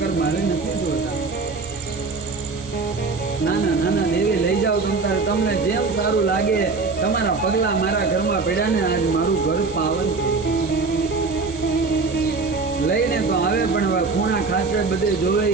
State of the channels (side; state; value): left; quieter; 4.1 dB